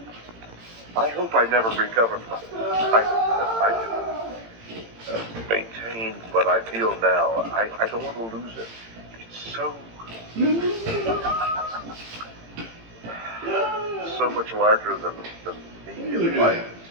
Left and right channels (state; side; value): late; left; 18 ms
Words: I hope I never recover from it. I can maintain what I feel now. I don't want to lose it. It's so much larger than me and life.